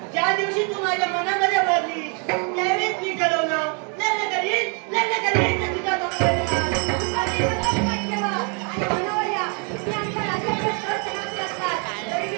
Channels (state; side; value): quieter; left; 37.1 dB